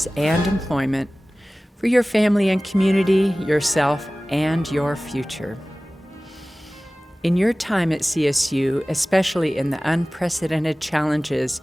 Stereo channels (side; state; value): both; normal; correlation 0.98